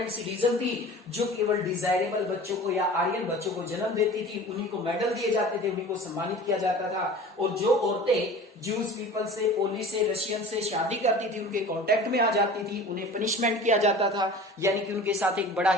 सिटीजन थी जो केवल डिजायरेबल बच्चों को या आर्यन बच्चों को जन्म देती थी। उन्हीं को मेडल दिए जाते थे, उन्हीं को सम्मानित किया जाता था। और जो औरतें ज्यूज पीपल से, पोलिश से, रशियन से शादी करती थी, उनके कॉन्टेक्ट में आ जाती थी, उन्हें पनिशमेंट किया जाता था, यानी कि उनके साथ एक बड़ा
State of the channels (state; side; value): normal; both; correlation 0.40